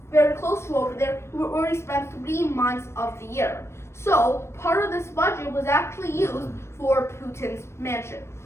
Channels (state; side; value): late; right; 0.13 ms